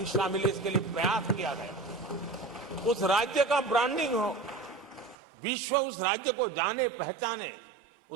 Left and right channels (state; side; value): drops out; left; at 5.2 s